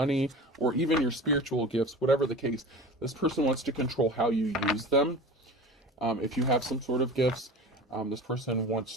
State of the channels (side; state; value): both; normal; correlation 0.35